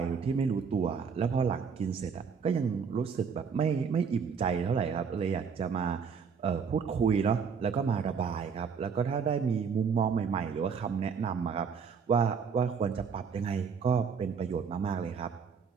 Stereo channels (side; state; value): left; quieter; 6.2 dB